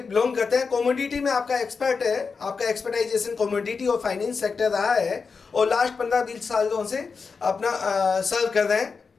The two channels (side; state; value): right; quieter; 5.1 dB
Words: करते हैं। कमोडिटी में आपका एक्सपर्ट है, आपका एक्सपर्टाइजेशन कमोडिटी और फाइनेंस सेक्टर रहा है और लास्ट 15-20 सालों से अपना सर्व कर रहे हैं